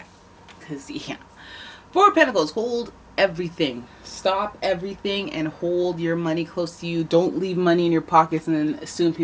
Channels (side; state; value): both; identical; correlation 1.00